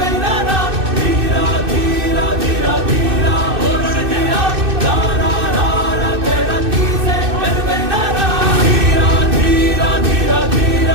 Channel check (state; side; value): late; left; 2.6 ms